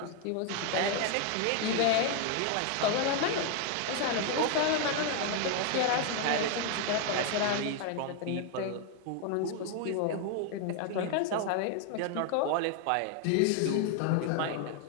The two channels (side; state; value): both; different; correlation 0.01